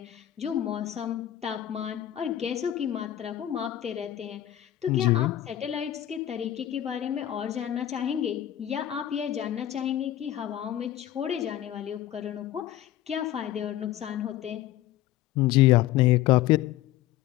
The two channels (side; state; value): right; quieter; 12.8 dB